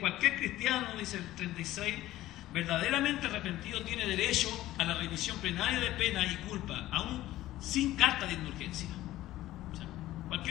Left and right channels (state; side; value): quieter; right; 15.4 dB